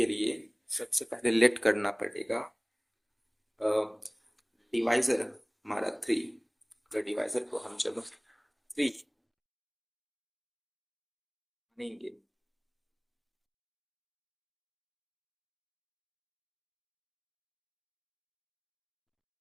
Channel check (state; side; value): identical; both; correlation 1.00